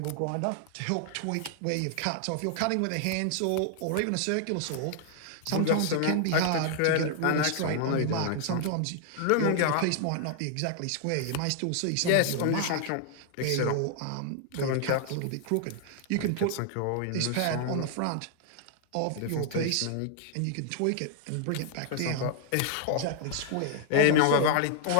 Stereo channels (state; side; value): different; both; correlation 0.00